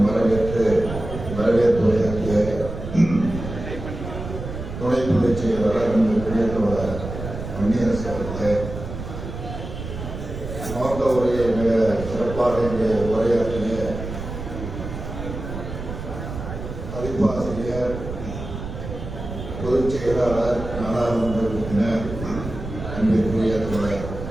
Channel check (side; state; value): right; noise; rumble, 8 dB below the sound